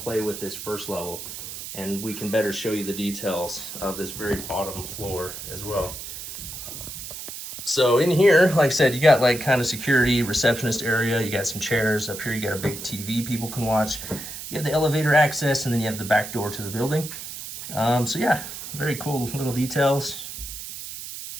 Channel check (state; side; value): noise; right; hiss, 9 dB below the sound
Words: play with this first level. And we can better show you the details of this very bottom floor as well. So in here, like I said, you got like kind of security, receptionist area. You got some chairs. Up here you got a big TV people can watch. You have the elevator access, and then you have the back door to the building. So yeah, very cool little details